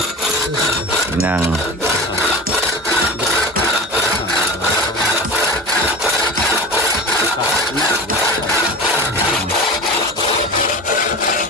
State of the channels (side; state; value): both; normal; correlation 0.32